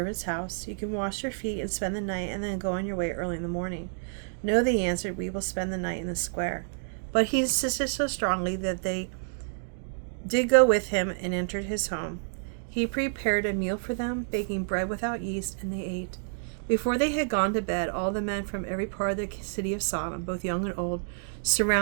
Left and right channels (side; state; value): left; silent; digital silence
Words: house. You can wash your feet and spend the night, and then go on your way early in the morning. No, they answered, we will spend the night in the square. But he insisted so strongly that they did go with him and entered his home. He prepared a meal for them, baking bread without yeast, and they ate. Before they had gone to bed, all the men from every part of the city of Sodom, both young and old,